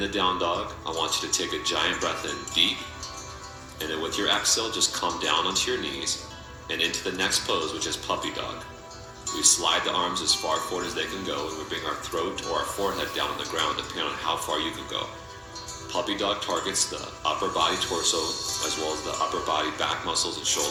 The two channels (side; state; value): both; identical; correlation 1.00